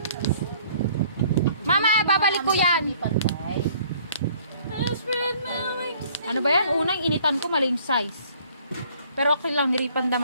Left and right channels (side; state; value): both; inverted; correlation -0.57